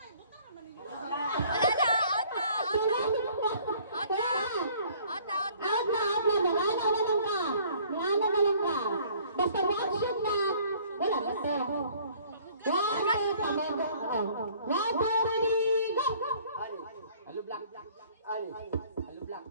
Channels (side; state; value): both; inverted; correlation -0.56